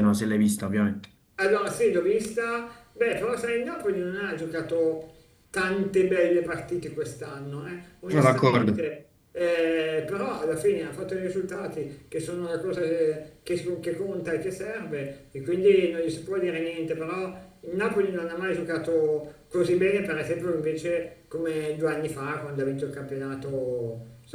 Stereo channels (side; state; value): both; identical; correlation 1.00